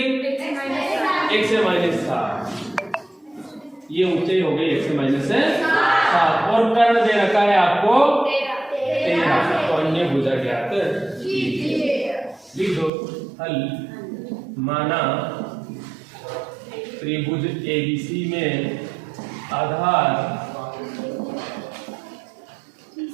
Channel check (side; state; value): left; drops out; at 12.9 s